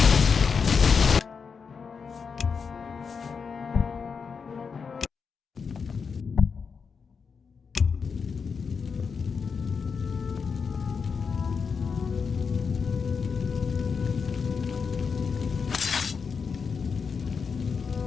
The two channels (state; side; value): quieter; right; 5.7 dB